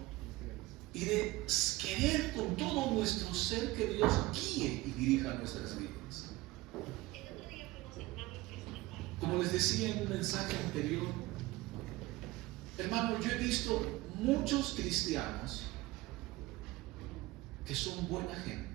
y de querer con todo nuestro ser que Dios guíe y dirija nuestras vidas. Como les decía en un mensaje anterior, hermano, yo he visto muchos cristianos que son buena gente,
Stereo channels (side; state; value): left; quieter; 19.8 dB